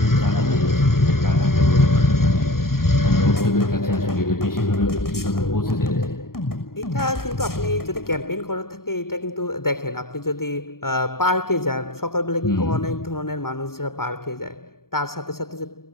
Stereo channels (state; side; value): late; right; 0.93 ms